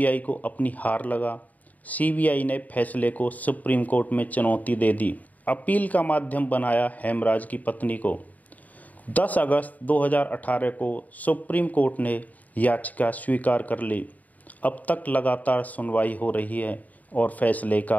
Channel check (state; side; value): late; right; 0.075 ms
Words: को अपनी हार लगा। सीबीआई ने फैसले को सुप्रीम कोर्ट में चुनौती दे दी। अपील का माध्यम बनाया हेमराज की पत्नी को। 10 अगस्त 2018 को सुप्रीम कोर्ट ने याचिका स्वीकार कर ली। अब तक लगातार सुनवाई हो रही है और फैसले